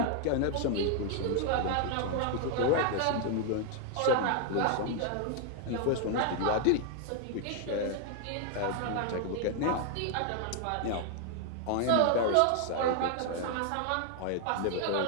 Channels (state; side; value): different; both; correlation 0.00